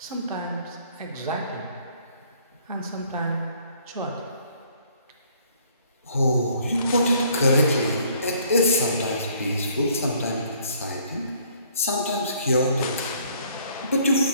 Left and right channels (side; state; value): both; inverted; correlation -0.61